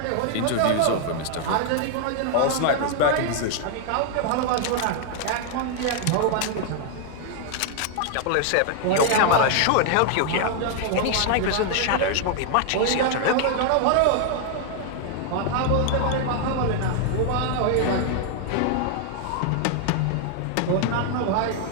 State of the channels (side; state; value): both; different; correlation 0.00